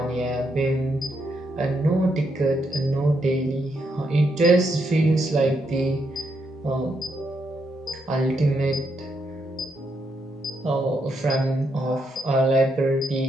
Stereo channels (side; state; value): both; normal; correlation 0.79